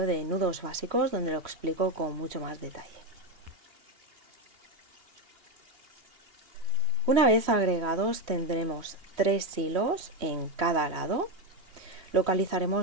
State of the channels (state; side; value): late; left; 3.2 ms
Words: de nudos básicos donde lo explico con mucho más detalle. Una vez agregados tendremos 3 hilos en cada lado.